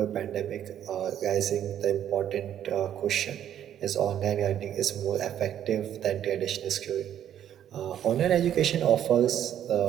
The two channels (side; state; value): left; quieter; 10.4 dB